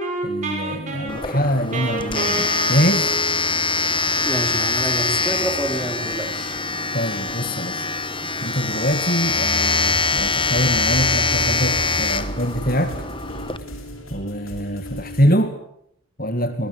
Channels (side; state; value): both; normal; correlation 0.17